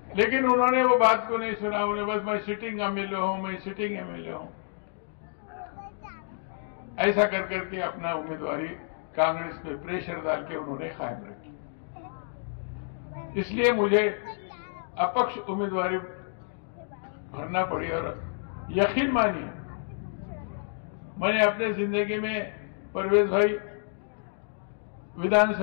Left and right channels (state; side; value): silent; right; digital silence